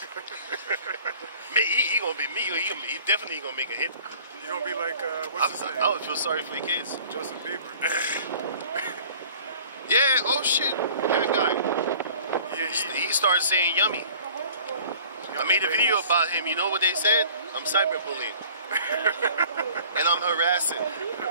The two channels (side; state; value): both; inverted; correlation -0.49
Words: He gonna be me. He definitely gonna make a hit. You gonna be like, what's his name? I would feel sorry for your kids. Justin Bieber. Yeah, oh shit. That guy. Yeah, He started saying yummy. I made a video about him. You know what they said? I'm cyberbullying. And I'm harassing.